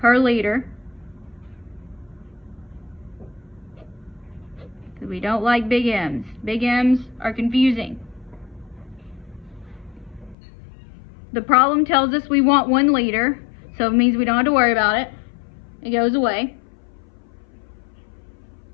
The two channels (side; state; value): right; drops out; at 10.4 s